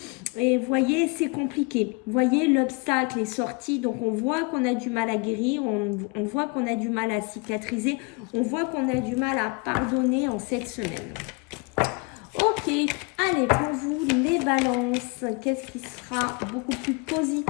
et vous voyez, c'est compliqué. Vous voyez, l'obstacle est sorti, donc on voit qu'on a du mal à guérir, on voit qu'on a du mal à cicatriser, on voit qu'on a du mal à pardonner en cette semaine. Ok, allez, pour vous, les balances, qu'est-ce qui sera beaucoup plus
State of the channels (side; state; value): right; quieter; 30.2 dB